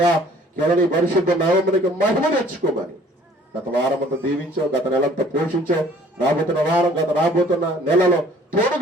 కేవలం ఈ పరిశుద్ధ నామమునికి మహిమ తెచ్చుకోమని గత వారం అంతా దీవించావు, గత నెలంతా పోషించావు. రాబోతున్న నెలలో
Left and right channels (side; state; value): both; normal; correlation 0.55